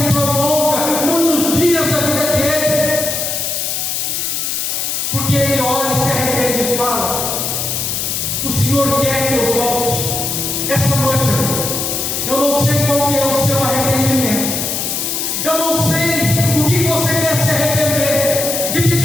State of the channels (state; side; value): noise; left; hiss, 1 dB below the sound